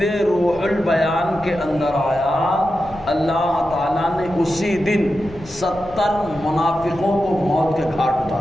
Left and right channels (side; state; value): left; noise; rumble, 19 dB below the sound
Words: روح البیان کے اندر آیا اللہ تعالیٰ نے اسی دن 70 منافقوں کو موت کے گھاٹ